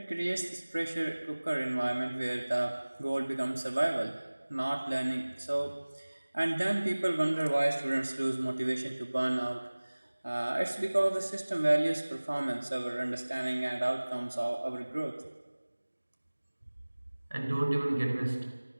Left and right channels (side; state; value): both; inverted; correlation -1.00